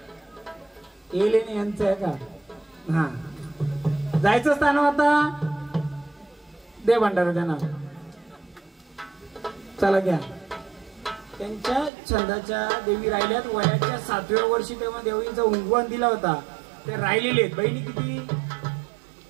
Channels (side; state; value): left; drops out; at 11.9 s